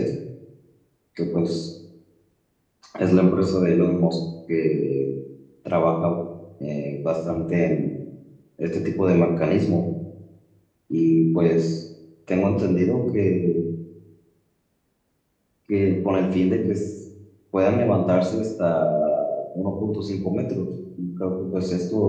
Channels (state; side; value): identical; both; correlation 1.00